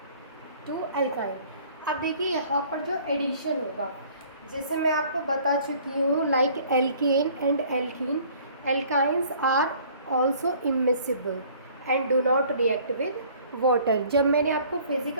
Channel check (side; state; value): both; inverted; correlation -0.54